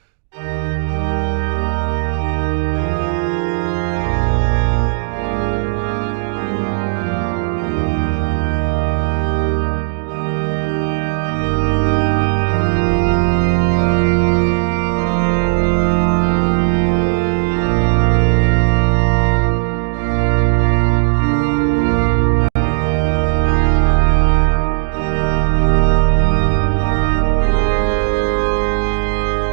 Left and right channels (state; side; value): silent; left; digital silence